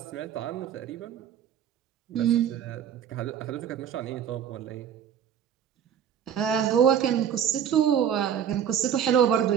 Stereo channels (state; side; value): quieter; left; 8.9 dB